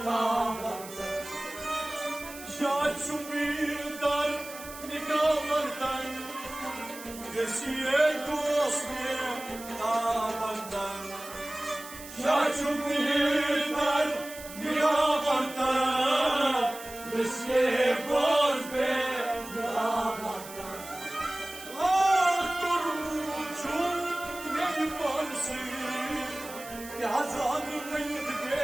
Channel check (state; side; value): noise; right; hiss, 14 dB below the sound